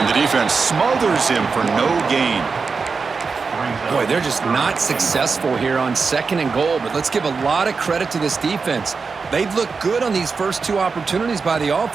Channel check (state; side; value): quieter; left; 4.8 dB